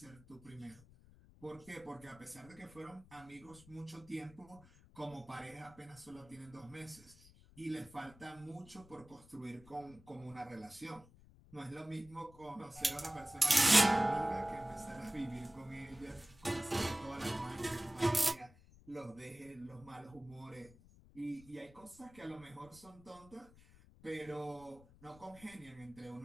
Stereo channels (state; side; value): noise; left; rumble, 22 dB below the sound